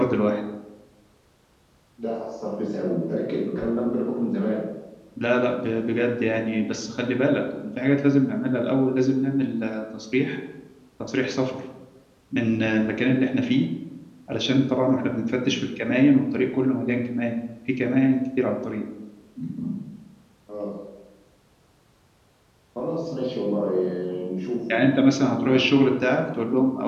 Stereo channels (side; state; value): both; identical; correlation 1.00